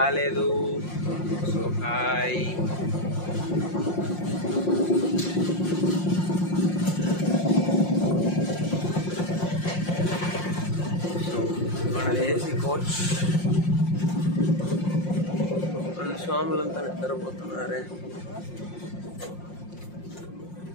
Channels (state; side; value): late; right; 5.6 ms